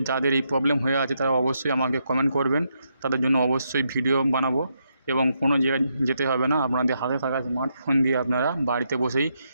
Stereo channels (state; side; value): inverted; both; correlation -0.80